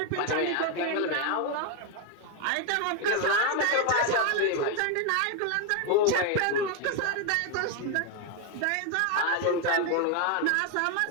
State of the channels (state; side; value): different; both; correlation 0.01